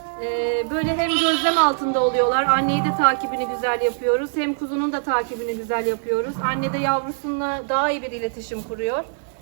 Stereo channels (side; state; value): left; silent; digital silence